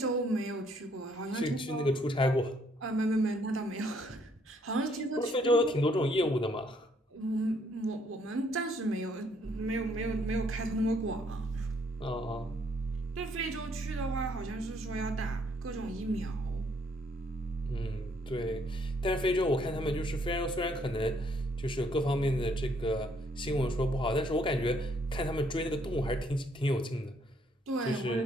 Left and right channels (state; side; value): normal; both; correlation 0.68